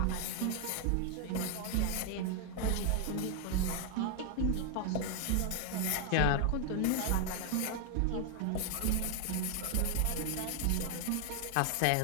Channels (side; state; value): both; different; correlation 0.00